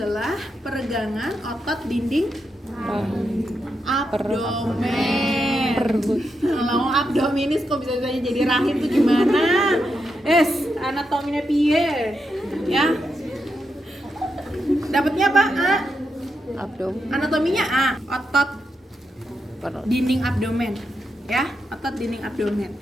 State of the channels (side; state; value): both; normal; correlation 0.85